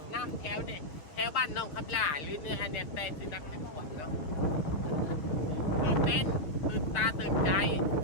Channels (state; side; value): late; right; 6.6 ms